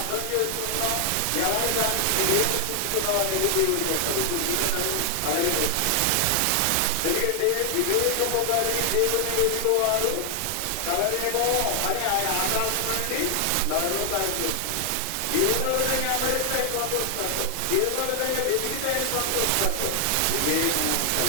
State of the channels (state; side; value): different; both; correlation 0.00